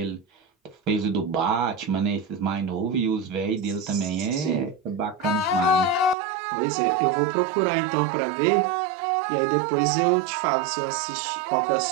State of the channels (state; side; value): drops out; left; at 6.2 s